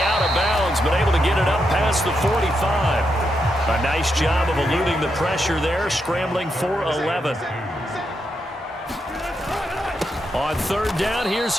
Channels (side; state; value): both; normal; correlation 0.83